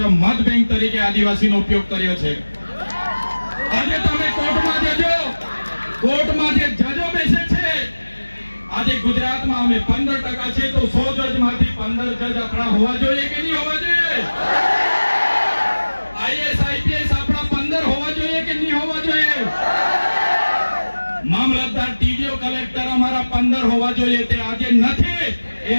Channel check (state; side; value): inverted; both; correlation -1.00